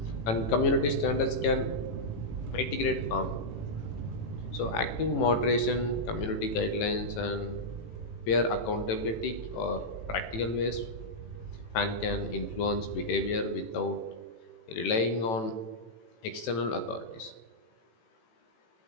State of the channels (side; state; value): right; late; 18 ms